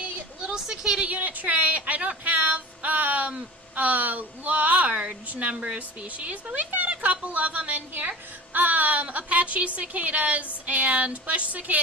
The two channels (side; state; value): both; normal; correlation 0.35